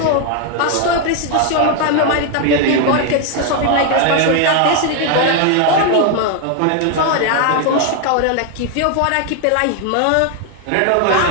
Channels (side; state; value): both; different; correlation 0.01